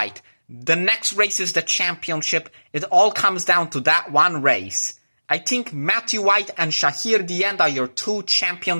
the next race is the championship. It all comes down to that one race. I think Matthew White and Shahir Dian are your 2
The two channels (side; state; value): both; inverted; correlation -1.00